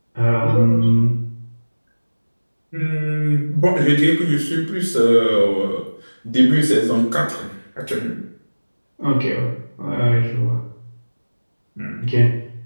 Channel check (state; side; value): inverted; both; correlation -1.00